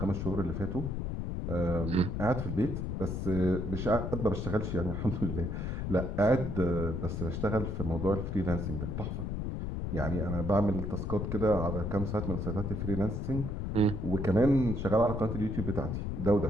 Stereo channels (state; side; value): noise; left; rumble, 3 dB below the sound